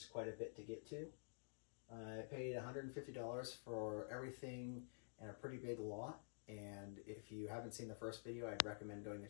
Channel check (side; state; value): right; silent; digital silence